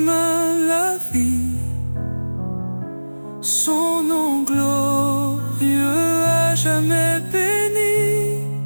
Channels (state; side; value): inverted; both; correlation -1.00